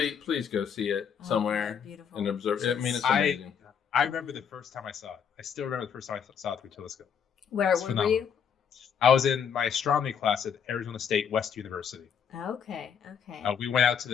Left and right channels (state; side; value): quieter; right; 7.5 dB